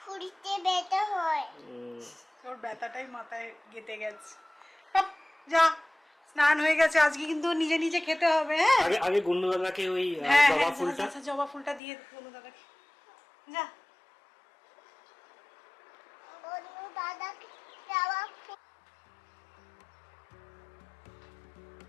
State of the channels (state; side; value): drops out; right; at 11.8 s